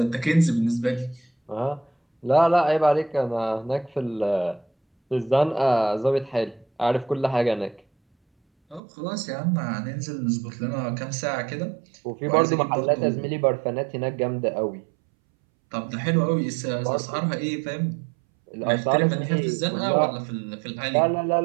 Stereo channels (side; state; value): left; drops out; at 8.8 s